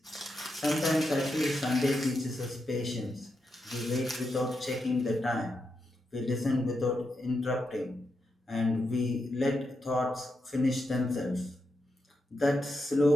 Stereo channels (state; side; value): normal; both; correlation 0.85